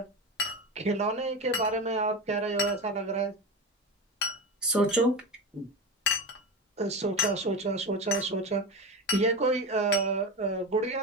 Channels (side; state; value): both; normal; correlation 0.22